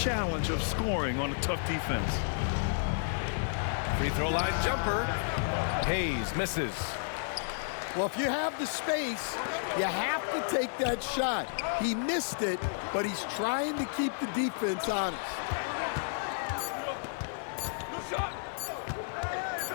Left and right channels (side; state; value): right; silent; 57 dB below the other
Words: of scoring on a tough defense. Free throw line jumper. Hayes misses. Well, if you have the space, you have to take that shot. He missed it, but he's trying to keep the defense honest.